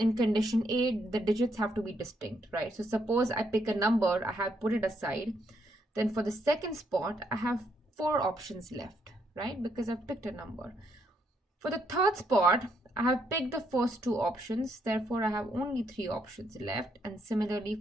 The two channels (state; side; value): normal; both; correlation 0.75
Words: condition A, the digits have to be distinct, right? So suppose I pick a number, I have put it aside. Then for the second spot, I have 4 options left, right? Because I've picked a number. For the third spot, I have picked the first 2 options. Therefore, I have only 3 options left. And similarly,